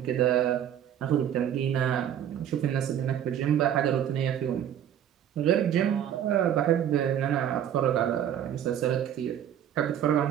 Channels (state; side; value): quieter; left; 10.1 dB